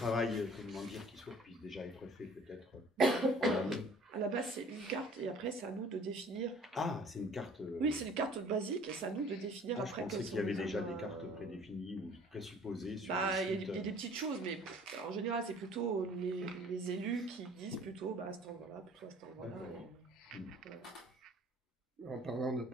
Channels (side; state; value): both; normal; correlation 0.52